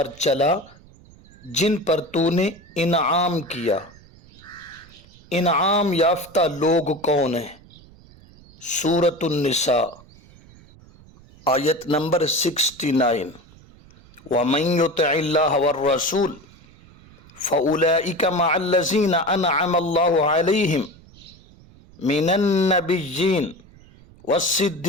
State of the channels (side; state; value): right; noise; rumble, 24 dB below the sound